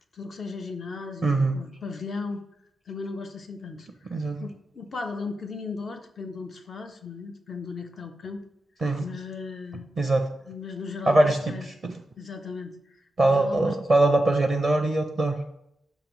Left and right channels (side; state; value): both; normal; correlation 0.89